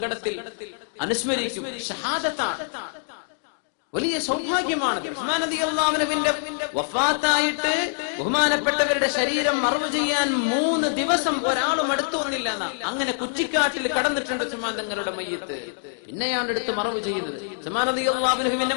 അനുസ്മരിക്കും. ഷഹാദത്താണ്, വലിയ സൗഭാഗ്യമാണ്. ഉസ്മാൻ റളിയല്ലാഹു അൻഹുവിന്റെ വഫാത്തായിട്ട് ബഹുമാനപ്പെട്ടവരുടെ ശരീരം മറവ് ചെയ്യാൻ 3 ദിവസം ഒരാളും അടുത്തു വന്നില്ല. അങ്ങനെ കുറ്റിക്കാട്ടിൽ കടന്നിട്ടുണ്ട് ഉസ്മാൻ തങ്ങളുടെ മയ്യിത്ത്. പിന്നെയാണ് എടുത്ത് മറവ് ചെയ്തത്. ഉസ്മാൻ റളിയല്ലാഹു അൻഹുവിനെ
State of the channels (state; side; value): silent; right; digital silence